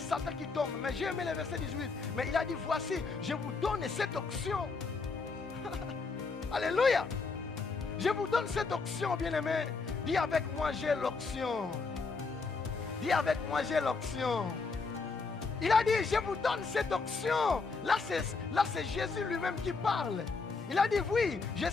qui tombent. Mais j'ai aimé le verset 18. Mais il a dit, voici, je vous donne cette option. Alléluia. Je vous donne cette option, bien-aimé. Dis avec moi, j'ai l'option. Dis avec moi, j'ai l'option. Il a dit, je vous donne cette option. Là, c'est Jésus lui-même qui parle. Il a dit, oui, je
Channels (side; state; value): right; quieter; 4.4 dB